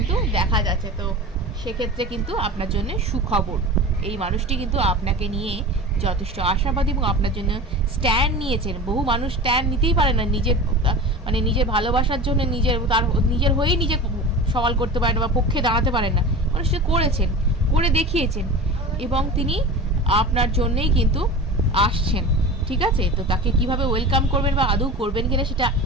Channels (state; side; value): normal; both; correlation 0.33